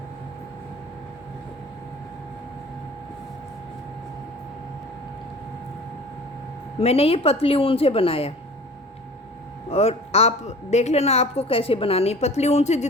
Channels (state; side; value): normal; both; correlation 0.43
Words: मैंने ये पतली ऊन से बनाया, और आप देख लेना आपको कैसे बनानी है। पतली ऊन से,